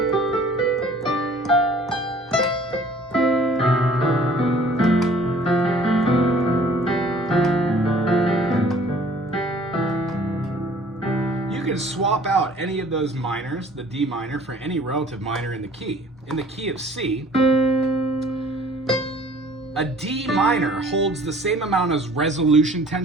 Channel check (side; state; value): both; normal; correlation 0.53